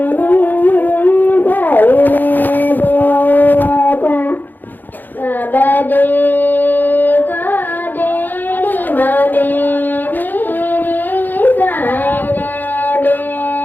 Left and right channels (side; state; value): right; late; 0.088 ms